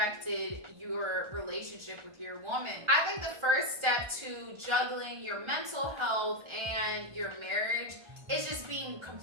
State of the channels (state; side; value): late; left; 1.4 ms